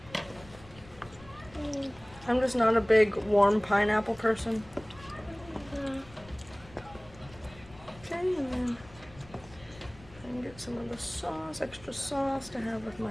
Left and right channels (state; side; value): noise; left; rumble, 21 dB below the sound